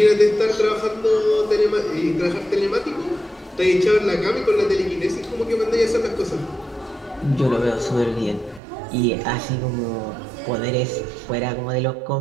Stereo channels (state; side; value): drops out; left; at 8.6 s